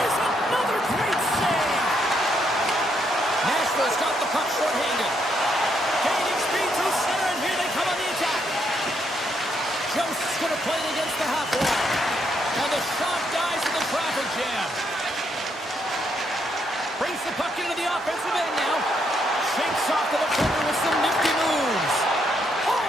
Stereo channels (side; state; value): both; normal; correlation 0.76